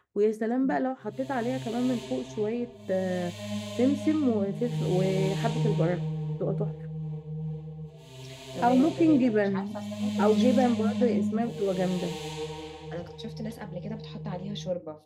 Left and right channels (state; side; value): identical; both; correlation 1.00